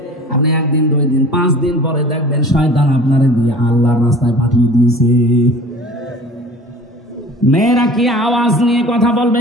আপনি 1 দিন 2 দিন 5 দিন পরে দেখবেন শয়তান আপনারে দিয়ে আল্লাহর রাস্তায় পাঠিয়ে দিয়েছে। মেয়েরা কি আওয়াজ নিয়ে কথা বলবে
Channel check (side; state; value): both; normal; correlation 0.43